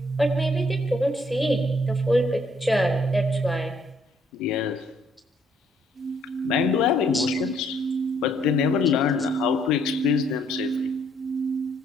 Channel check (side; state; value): both; normal; correlation 0.67